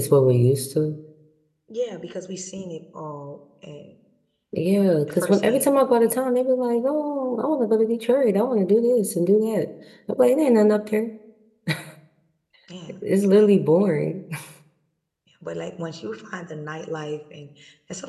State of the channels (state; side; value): identical; both; correlation 1.00